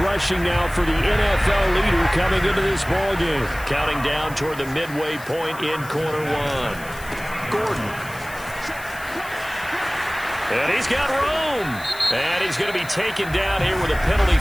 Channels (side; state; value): left; noise; hiss, 17 dB below the sound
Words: now for the NFL leader coming into this ballgame. Counting down toward the midway point in quarter one. Gordon. And he's got room. And he's going to be taken down here with a penalty